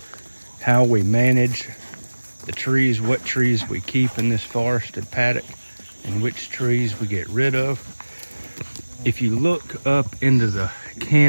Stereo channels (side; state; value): both; inverted; correlation -1.00